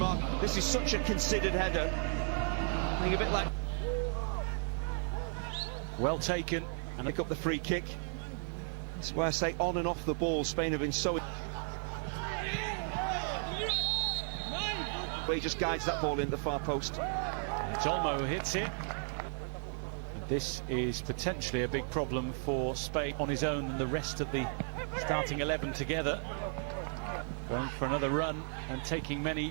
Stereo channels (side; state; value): left; silent; 55 dB below the other